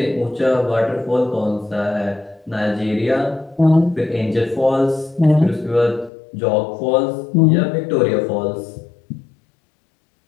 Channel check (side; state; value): right; drops out; at 6.1 s